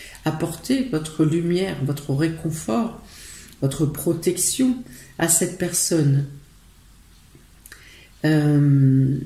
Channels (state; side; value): identical; both; correlation 1.00